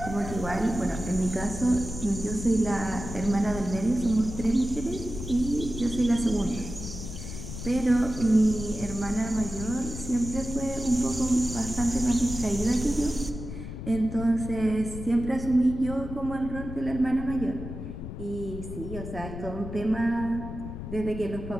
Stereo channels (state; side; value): noise; left; rumble, 8 dB below the sound